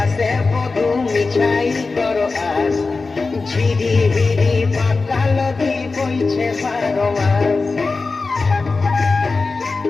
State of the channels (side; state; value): right; quieter; 4.0 dB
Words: বধু মিছাই করো আস ঝিরি হিরি পাতা নদী বইছে 12 মাস